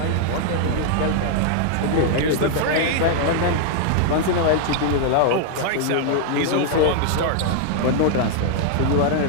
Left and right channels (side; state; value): both; different; correlation 0.00